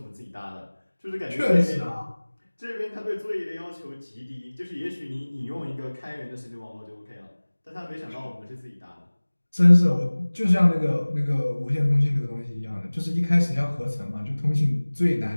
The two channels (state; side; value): inverted; both; correlation -1.00